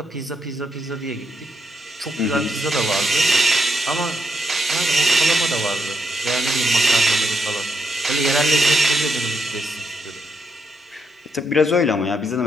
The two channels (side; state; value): both; normal; correlation 0.80